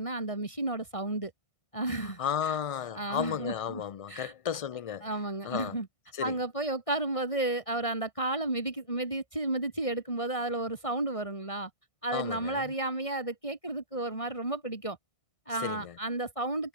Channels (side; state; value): right; late; 1.6 ms